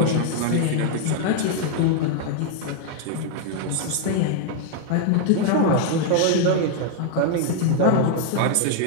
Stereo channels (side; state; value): both; different; correlation 0.00